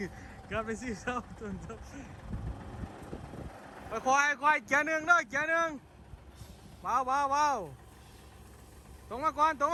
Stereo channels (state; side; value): identical; both; correlation 1.00